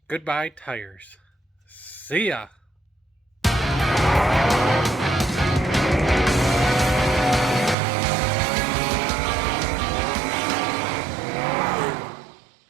Goodbye, tires. See ya.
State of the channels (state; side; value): drops out; left; at 7.8 s